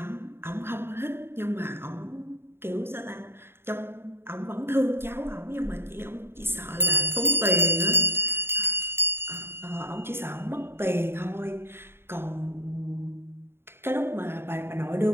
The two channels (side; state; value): left; late; 0.11 ms